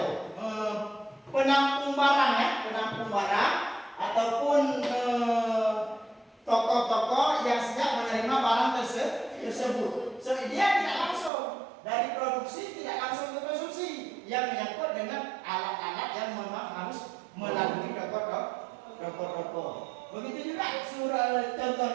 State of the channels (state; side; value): drops out; left; at 11.3 s